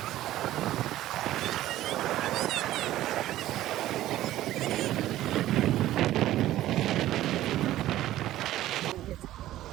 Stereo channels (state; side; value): quieter; left; 14.3 dB